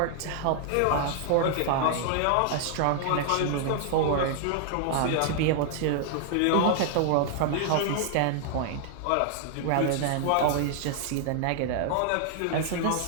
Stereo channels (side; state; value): both; different; correlation 0.00